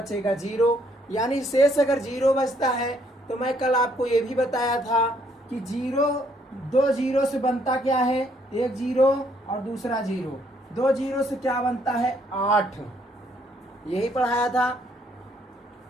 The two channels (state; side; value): normal; both; correlation 0.68